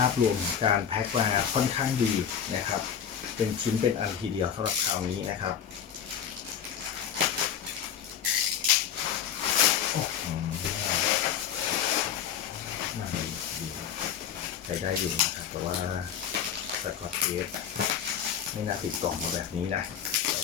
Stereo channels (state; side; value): quieter; right; 8.6 dB